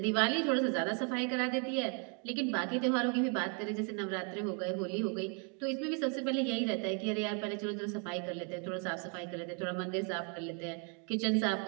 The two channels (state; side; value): quieter; left; 38.8 dB